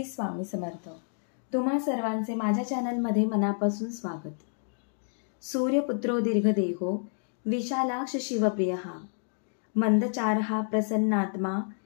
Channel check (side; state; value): right; silent; digital silence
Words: स्वामी समर्थ। तुम्हा सर्वांचे माझ्या चॅनलमध्ये मनापासून स्वागत। सूर्यपुत्रो दीर्घदेहो विशालाक्ष शिवप्रियः मंदचारः प्रसन्नात्मा